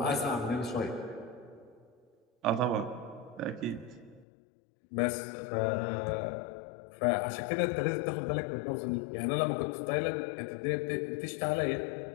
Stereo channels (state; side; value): drops out; right; at 4.2 s